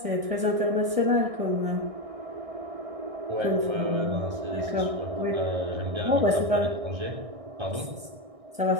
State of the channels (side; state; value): left; late; 1.6 ms